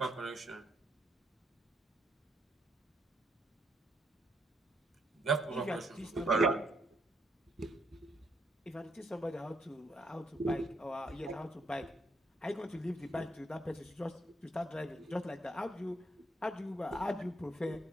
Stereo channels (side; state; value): both; normal; correlation 0.74